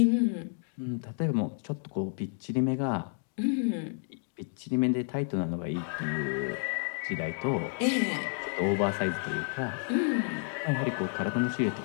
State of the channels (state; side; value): silent; right; 57 dB below the other